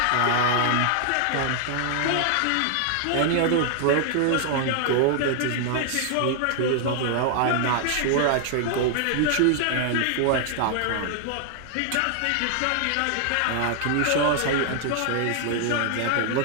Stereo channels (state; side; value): different; both; correlation 0.00